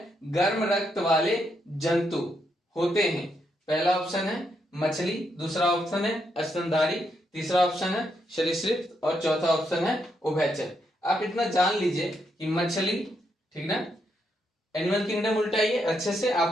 गर्म रक्त वाले जंतु होते हैं? पहला ऑप्शन है मछली, दूसरा ऑप्शन है स्तनधारी, तीसरा ऑप्शन है सरीसृप और चौथा ऑप्शन है उभयचर। आप इतना जान लीजिए कि मछली, ठीक ना, एनिमल किंगडम उल्टाइए अच्छे से,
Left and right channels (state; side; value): normal; both; correlation 0.79